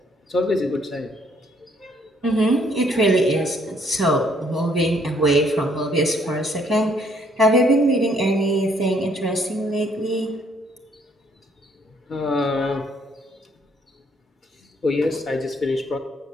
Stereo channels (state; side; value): normal; both; correlation 0.66